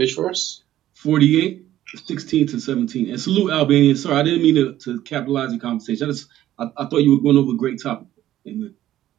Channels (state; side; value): quieter; left; 13.2 dB